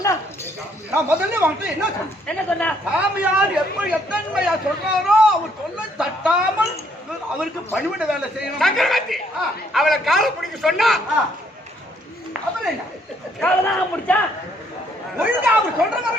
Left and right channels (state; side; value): normal; both; correlation 0.68